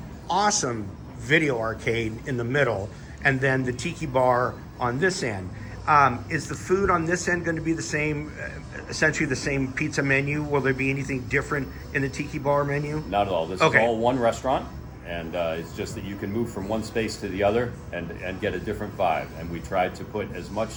awesome video arcade in the middle, and then the tiki bar on this end. Is the food on this end going to be the same, essentially the same pizza menu? Will there be anything different in the tiki bar menu? Not at all. This is all one restaurant, and it's just that you can move from one space to the other and get a different vibe. And we tried to put as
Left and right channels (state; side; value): identical; both; correlation 1.00